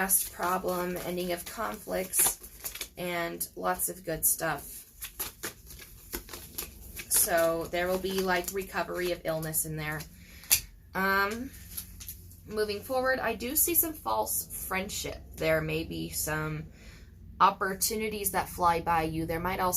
problem, ending of conflicts, and lots of good stuff. So there will be like recovery of illness in there. Moving forward, I do see some false friendship. There may be some opportunities that fly by you. There might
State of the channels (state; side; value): identical; both; correlation 1.00